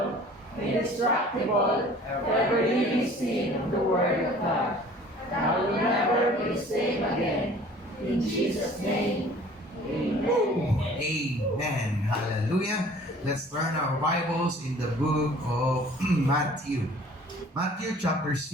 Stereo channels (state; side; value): normal; both; correlation 0.49